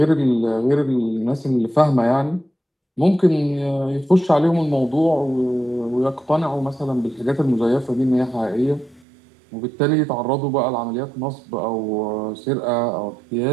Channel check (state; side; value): drops out; left; at 9.0 s